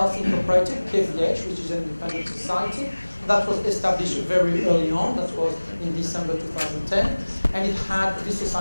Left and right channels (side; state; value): both; inverted; correlation -1.00